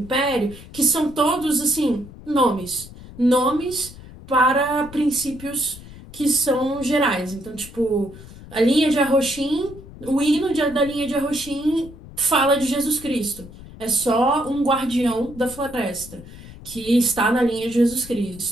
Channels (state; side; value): noise; left; rumble, 17 dB below the sound